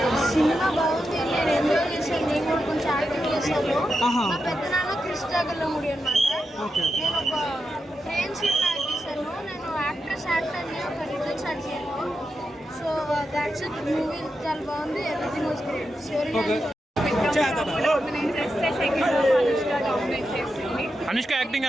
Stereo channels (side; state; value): both; normal; correlation 0.87